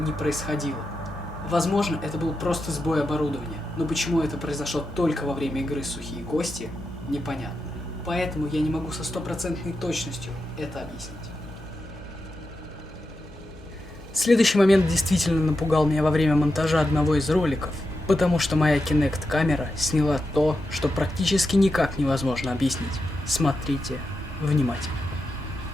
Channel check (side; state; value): both; normal; correlation 0.88